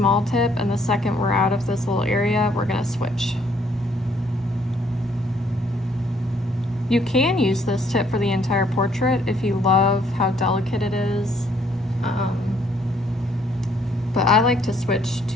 tip, and the second we're out of this little area, we're gonna switch. You can use this tip for the entire portrait if you love how delicate it is. But I like to switch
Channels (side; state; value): both; normal; correlation 0.66